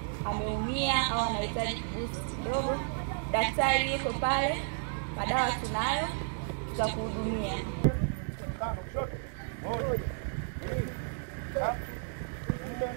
ameumia au anahitaji boost kidogo, daktari yuko pale, madawa tunayo, tutakuhudumia. Moja, 2, 3,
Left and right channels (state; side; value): silent; left; digital silence